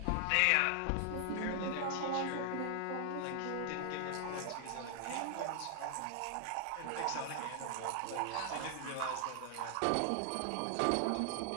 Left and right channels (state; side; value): different; both; correlation 0.00